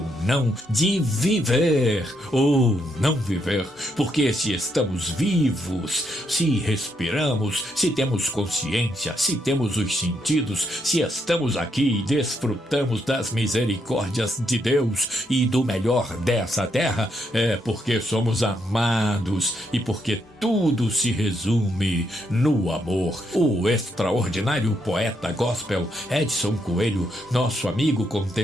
não, de viver ou não viver. Porque se estamos vivos, se respiramos, se temos consciência, se temos os sentidos, se estamos aqui e desfrutamos das misericórdias de Deus e do melhor dessa terra, é porque somos amados e porque tudo se resume no amor. O extraordinário poeta gospel Edson Coelho, nosso amigo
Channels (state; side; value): normal; both; correlation 0.77